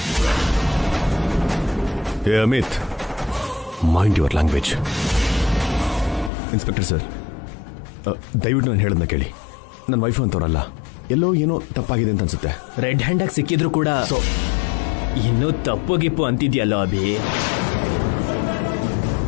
ಏ Amit, mind your language. Inspector sir, ದಯವಿಟ್ಟು ನಾನು ಹೇಳೋದನ್ನ ಕೇಳಿ. ನನ್ನ ವೈಫ್ ಅಂತವ್ರಲ್ಲ, ಎಲ್ಲೋ ಏನೋ ತಪ್ಪಾಗಿದೆ ಅಂತ ಅನ್ಸುತ್ತೆ. ರೆಡ್ ಹ್ಯಾಂಡ್ ಆಗಿ ಸಿಕ್ಕಿದ್ರು ಕೂಡ ಇನ್ನೂ ತಪ್ಪು ಗಿಪ್ಪು ಅಂತಿದ್ಯಲ್ಲೋ ಅಭಿ.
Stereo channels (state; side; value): drops out; right; at 6.3 s